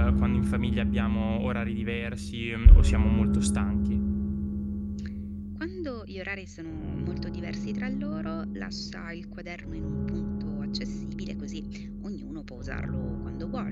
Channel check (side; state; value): both; identical; correlation 1.00